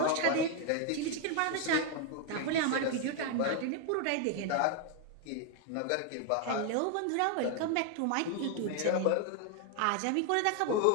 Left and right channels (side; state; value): both; different; correlation 0.01